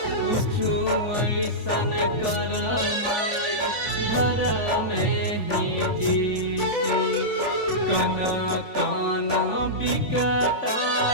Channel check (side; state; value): right; late; 3.5 ms